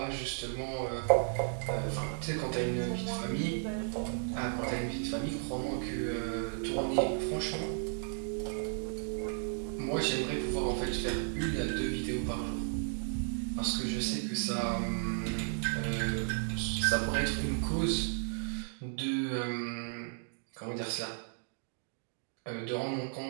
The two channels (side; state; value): left; silent; digital silence